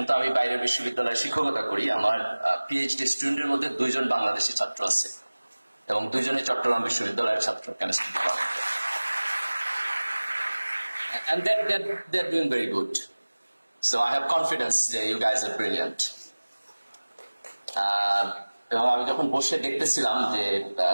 তো আমি বাইরের বিশ্ববিদ্যালয়ে শিক্ষকতা করি। আমার পিএইচডি স্টুডেন্টের মধ্যে 2 জন বাংলাদেশি ছাত্র আছে এবং 2 জনই চট্টগ্রাম বিশ্ববিদ্যালয়ের ছাত্র, কেমিস্ট্রি ডিপার্টমেন্টে। And they're doing very good. So I have confidence that you guys are brilliant. এবং আমি যখন বসে দেখতেছিলাম যে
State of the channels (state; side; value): inverted; both; correlation -1.00